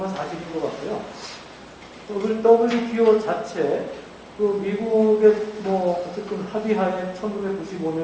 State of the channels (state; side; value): identical; both; correlation 1.00